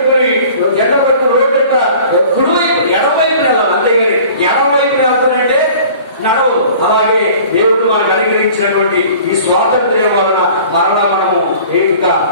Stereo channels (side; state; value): both; inverted; correlation -0.47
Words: జెండా పడుతున్న రోడ్డు ఎంత కుడివైపు ఎడవైపు వెళ్ళాలి, అంతేగాని ఎడవైపు వెళ్తానంటే నడవదు. అలాగే దేవుడు మనకు అనుగ్రహించినటువంటి ఈ స్వాతంత్ర్యం వలన మరలా మనము ఏమిగా